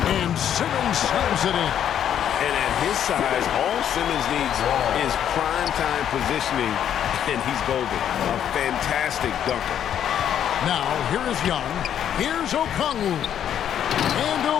Simmons slams it in. And at his size, all Simmons needs is prime-time positioning, and he's golden. A fantastic dunker. Now, here is Young. Here's Okongwu. And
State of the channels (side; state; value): right; quieter; 9.7 dB